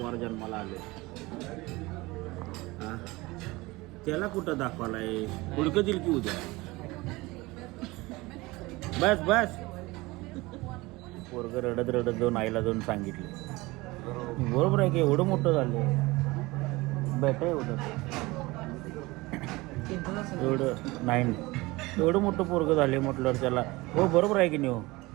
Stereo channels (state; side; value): quieter; left; 21.9 dB